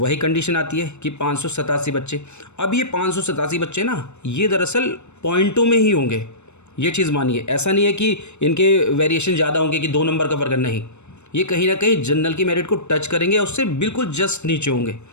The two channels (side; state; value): right; late; 0.82 ms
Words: कंडीशन आती है कि 587 बच्चे। अब ये 587 बच्चे ना ये दरअसल पॉइंटों में ही होंगे, ये चीज़ मानिए। ऐसा नहीं है कि इनके वेरिएशन ज़्यादा होंगे कि 2 नंबर का फ़र्क नहीं, ये कहीं ना कहीं जनरल की मेरिट को टच करेंगे, उससे बिल्कुल जस्ट नीचे होंगे।